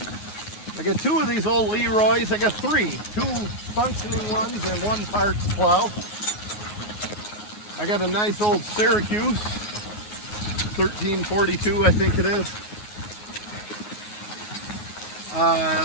got 2 of these old Leroy's. I got 3. 2 functioning ones and 1 parts plow. I got a nice old Syracuse 1342, I think it is.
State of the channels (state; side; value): late; right; 9.5 ms